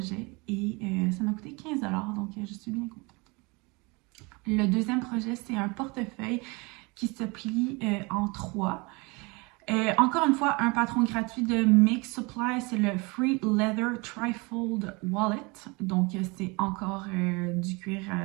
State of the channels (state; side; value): quieter; left; 27.4 dB